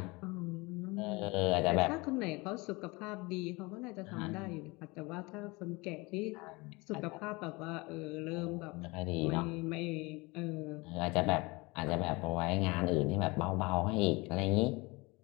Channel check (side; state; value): right; quieter; 24.9 dB